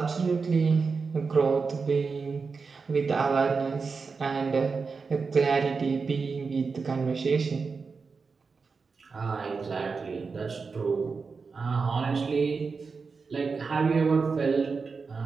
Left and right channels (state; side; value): quieter; left; 4.8 dB